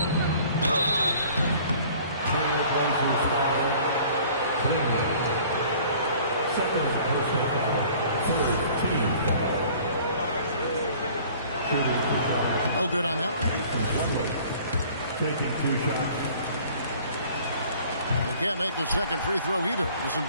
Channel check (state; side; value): inverted; both; correlation -0.51